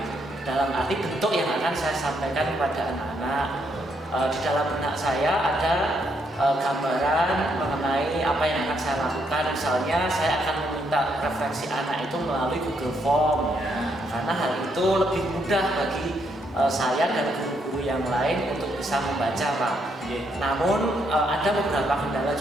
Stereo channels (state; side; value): normal; both; correlation 0.75